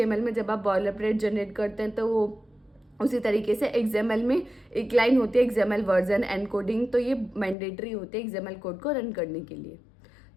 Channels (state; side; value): drops out; right; at 7.6 s